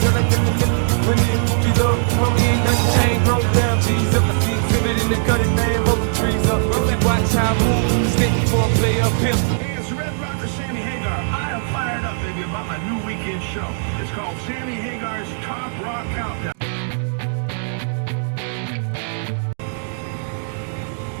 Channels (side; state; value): left; silent; digital silence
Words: like them the niggas? When it be love, homie ain't nothing changed. Roll down, cheese up. I see exhibit in the cutting, man, rolling trees up. If you watch how I move, you stick before I play up here. Hey, it's Red Rocker Sammy Hagar. I am fired up, baby, about my new weekend show. It's called Sammy Hagar's Top Rock Countdown.